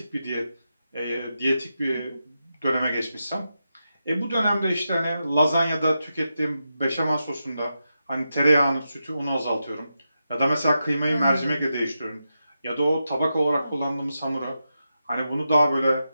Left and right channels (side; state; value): both; inverted; correlation -0.88